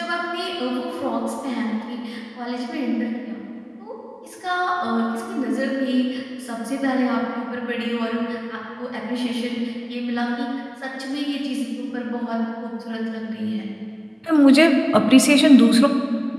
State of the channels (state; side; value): identical; both; correlation 1.00